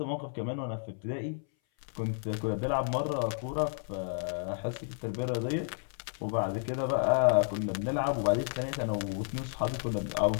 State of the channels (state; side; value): silent; right; 57 dB below the other